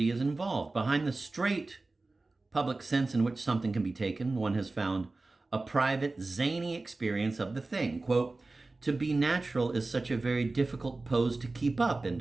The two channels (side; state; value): left; quieter; 3.3 dB